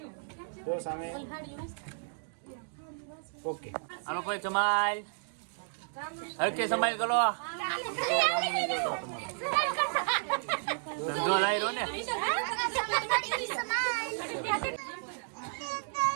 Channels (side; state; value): left; silent; digital silence